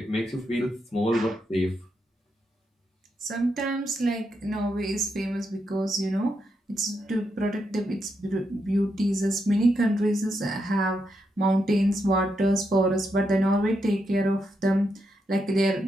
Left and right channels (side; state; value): both; normal; correlation 0.82